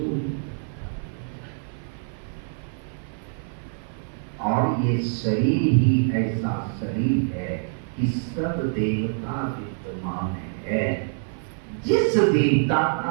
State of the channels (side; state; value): left; silent; 56 dB below the other